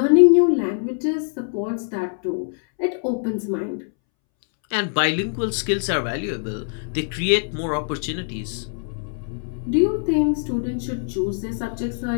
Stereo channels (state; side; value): silent; right; 63 dB below the other